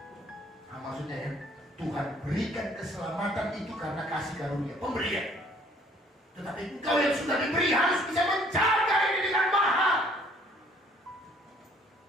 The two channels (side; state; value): both; normal; correlation 0.59